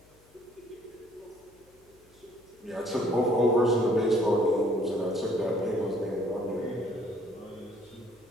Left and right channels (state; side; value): noise; left; hum, 30 dB below the sound